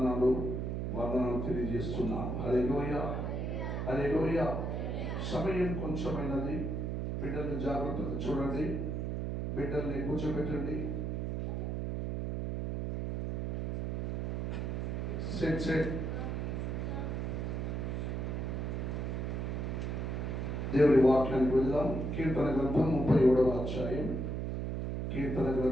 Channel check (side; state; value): right; noise; hum, 1 dB below the sound